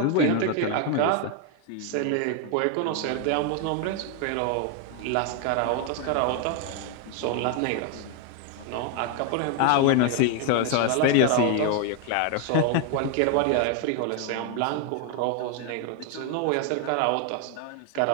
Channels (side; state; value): both; different; correlation 0.01